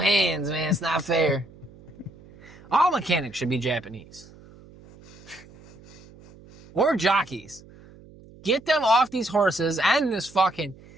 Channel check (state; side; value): noise; right; hum, 22 dB below the sound